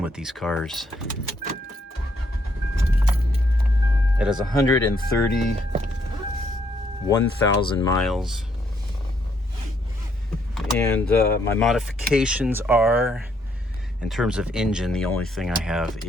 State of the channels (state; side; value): normal; both; correlation 0.72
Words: with these cars. It has 131,000 miles. And my modifications are, in terms of engine, the only thing I have